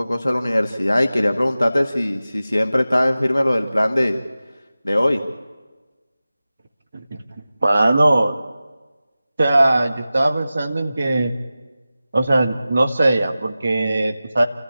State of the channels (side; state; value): both; inverted; correlation -0.96